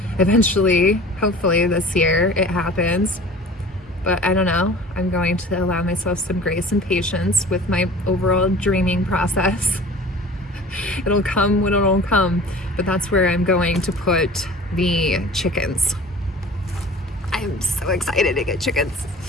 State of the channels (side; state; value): both; normal; correlation 0.42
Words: eventually, hopefully this year, it happens. But I don't know, I'm going to allow myself some grace and patience with my overall dreaming process. It'll come when it'll come, but that's where I'm going to put the chickens. I'm so excited to get chickens.